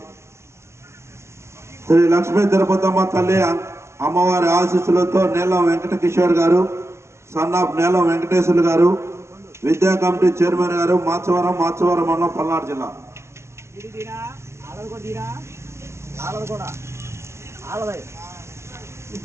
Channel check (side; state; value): left; late; 0.13 ms